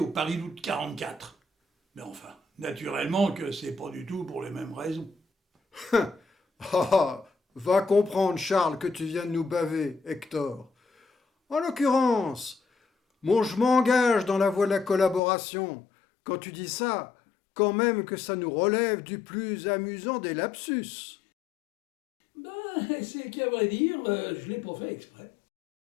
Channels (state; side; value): drops out; right; at 15.2 s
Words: Paris d'août 44. Mais enfin, naturellement que c'est pas du tout pour les mêmes raisons. Va comprendre, Charles, que tu viens de nous baver, Hector. En l'occurrence, je m'engage dans la voie de la collaboration. Quand tu dis ça, quand même que ça nous relève du plus amusant des lapsus. Ben, c'est qu'à vrai dire, je l'ai pas fait exprès.